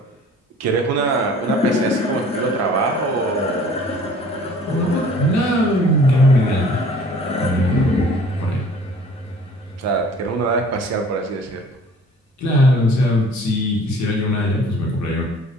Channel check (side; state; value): both; normal; correlation 0.50